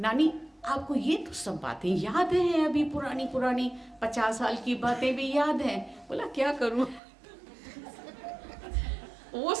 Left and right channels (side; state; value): left; drops out; at 7.0 s